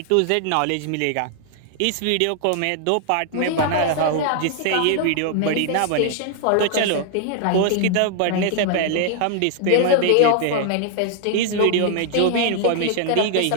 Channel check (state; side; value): different; both; correlation 0.00